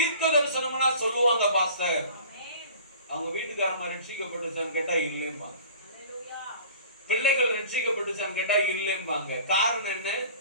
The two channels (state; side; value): inverted; both; correlation -0.44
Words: தரிசனம்னா சொல்லுவாங்க, பாஸ்டர் அவங்க வீட்டுக்காரமா ரட்சிக்கப்பட்டுச்சான்னு கேட்டா இல்லைம்பாங்க, பிள்ளைகள் ரட்சிக்கப்பட்டுச்சான்னு கேட்டா இல்லைம்பாங்க. காரணம் என்ன?